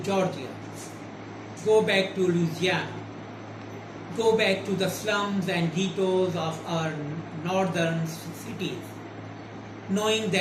Georgia, go back to Louisiana, go back to the slums and ghettos of our northern cities, knowing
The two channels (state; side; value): identical; both; correlation 1.00